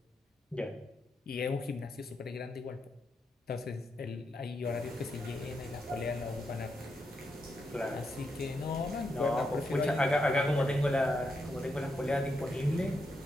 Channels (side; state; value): both; normal; correlation 0.83